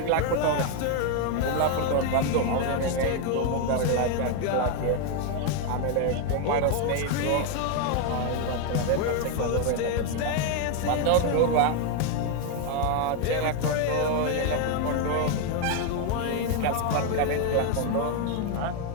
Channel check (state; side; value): different; both; correlation 0.01